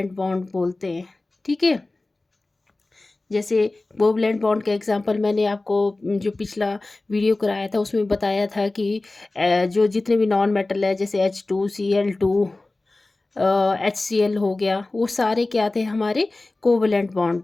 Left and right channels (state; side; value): quieter; right; 3.1 dB